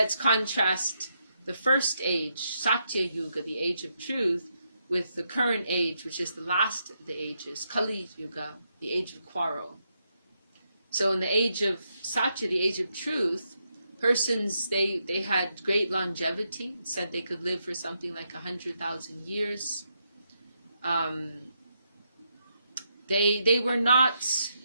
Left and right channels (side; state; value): both; inverted; correlation -0.81